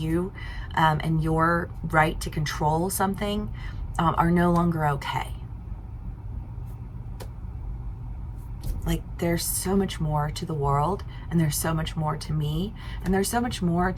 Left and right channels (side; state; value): both; identical; correlation 1.00